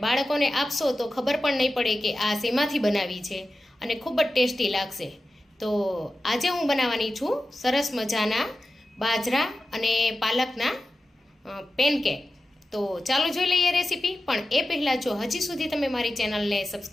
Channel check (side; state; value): both; normal; correlation 0.93